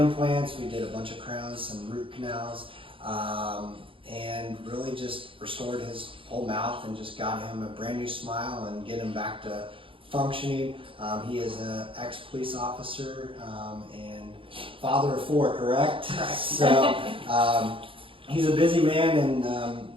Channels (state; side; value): late; left; 0.25 ms